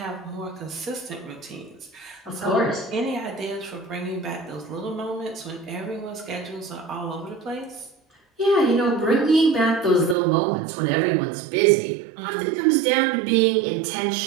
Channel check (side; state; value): left; drops out; at 10.2 s